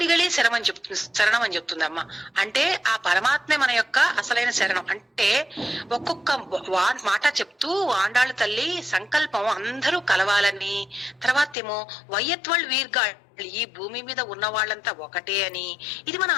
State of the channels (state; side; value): drops out; right; at 11.6 s